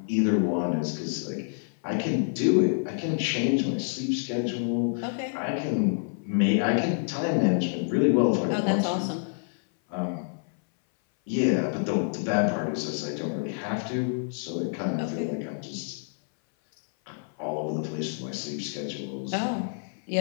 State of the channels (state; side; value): silent; right; 60 dB below the other